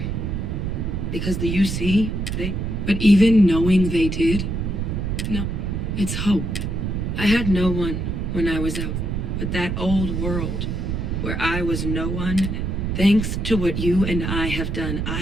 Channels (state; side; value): noise; right; rumble, 2 dB below the sound